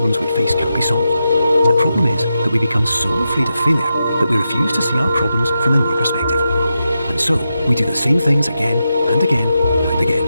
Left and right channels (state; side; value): inverted; both; correlation -0.88